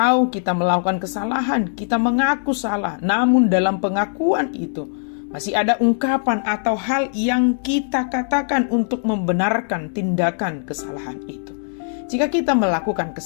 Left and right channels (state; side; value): silent; right; digital silence